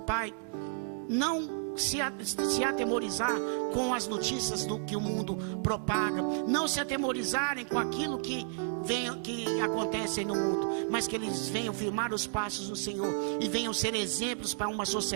não se atemorizar com as notícias do que o mundo propaga, não se atemorizarem com aquilo que acontece no mundo, mas que eles venham firmar os passos no Senhor e venham ser exemplos para uma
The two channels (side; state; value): left; silent; digital silence